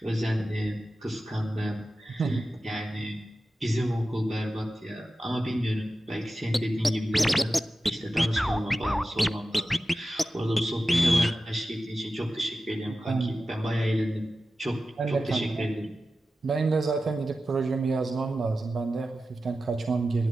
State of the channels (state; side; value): normal; both; correlation 0.94